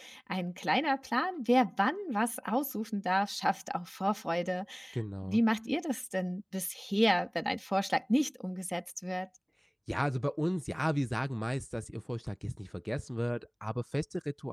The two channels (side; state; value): both; identical; correlation 1.00